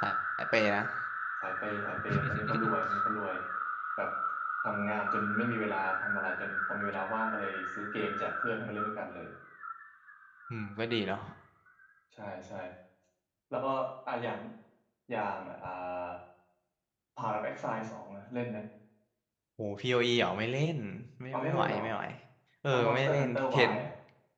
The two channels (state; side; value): identical; both; correlation 1.00